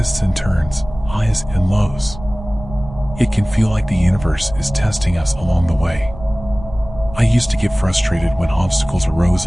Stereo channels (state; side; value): noise; right; rumble, 14 dB below the sound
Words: and turns, highs and lows. It can feel like the universe is testing us along the way. I used to get frustrated when obstacles arose